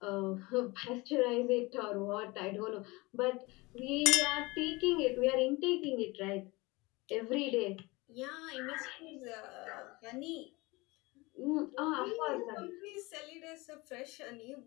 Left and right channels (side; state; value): right; quieter; 23.7 dB